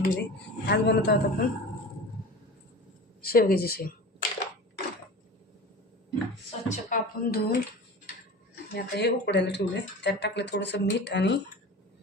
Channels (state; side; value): normal; both; correlation 0.34